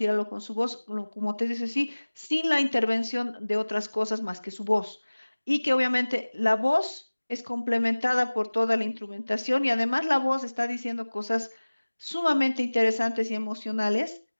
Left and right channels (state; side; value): inverted; both; correlation -1.00